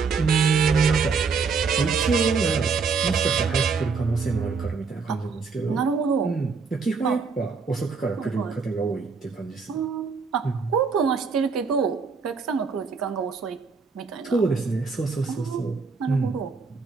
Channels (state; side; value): quieter; left; 5.0 dB